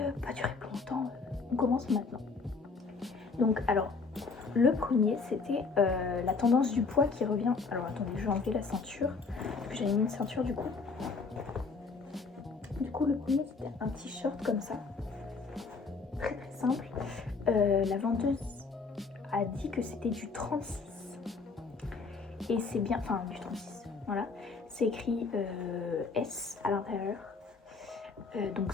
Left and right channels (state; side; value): quieter; right; 4.5 dB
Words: pas durer plus longtemps, on commence maintenant. Donc, alors, le premier, c'était la tendance du poids qui revient. Alors, attendez, je vais enlever la ceinture, parce que j'avais mis une ceinture du coup. Du coup, le premier, c'était un t-shirt comme ça, très très simple. La vendeuse a dit que c'était du 36. Et c'est bien, enfin, du 36, voilà. C'est écrit S à l'intérieur. Donc